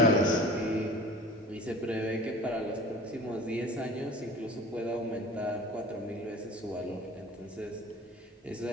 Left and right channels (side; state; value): both; normal; correlation 0.41